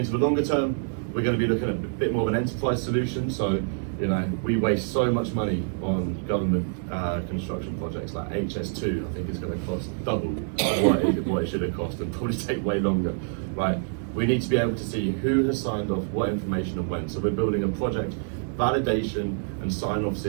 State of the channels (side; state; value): left; silent; 61 dB below the other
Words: the longer term, we're going to be looking at a bit more of an enterprise solution. So, you know, we waste so much money on government construction projects like HS2. I think it's going to cost double what it should have cost, and probably take way longer, right? We need to be able to see who has signed off what information and when. So we're building a project validation and sign-off